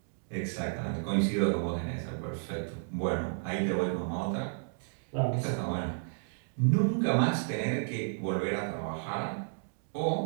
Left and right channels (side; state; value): left; silent; digital silence